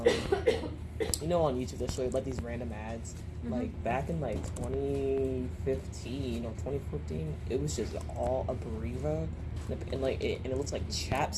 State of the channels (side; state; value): both; identical; correlation 1.00